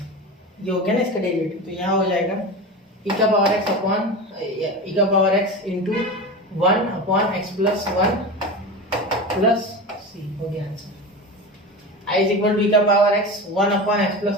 ये हो गया ना इसका डेरिवेटिव, तो यहाँ हो जाएगा e का पावर x अपॉन e का power x into 1 upon x plus 1 plus c, हो गया answer. i is equal to e का power x 1 upon x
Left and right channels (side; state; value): both; normal; correlation 0.26